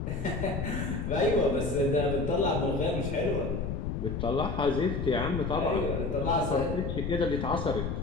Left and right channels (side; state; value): left; noise; rumble, 3 dB below the sound